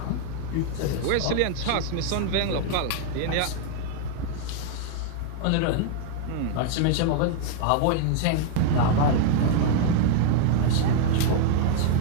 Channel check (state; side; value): different; both; correlation 0.00